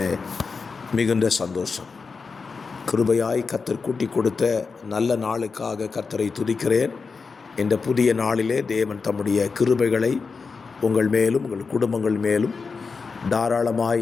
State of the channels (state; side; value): quieter; right; 4.8 dB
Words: மிகுந்த சந்தோஷம். கிருபையாய் கர்த்தர் கூட்டி கொடுத்த நல்ல நாளுக்காக கர்த்தரை துதிக்கிறேன். இந்த புதிய நாளிலே தேவன் தம்முடைய கிருபைகளை உங்கள் மேலும் உங்கள் குடும்பங்கள் மேலும்